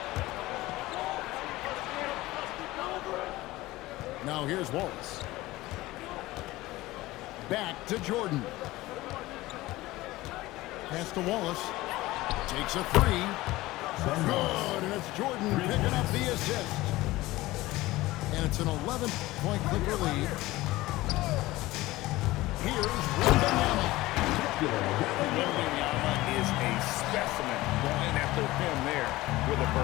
Now here's Wallace. Back to Jordan. Pass to Wallace. Takes a 3. Good, and it's Jordan picking up the assist. And it's an 11-point Clipper lead. Here's Wembanyama. Wembanyama is a specimen going after him there with a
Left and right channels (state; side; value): quieter; right; 18.4 dB